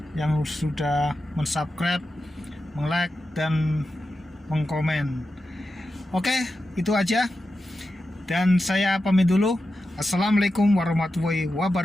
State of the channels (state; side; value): normal; both; correlation 0.91